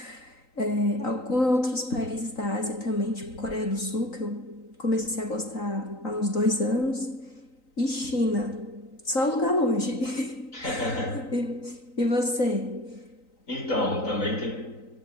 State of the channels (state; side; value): late; right; 3.9 ms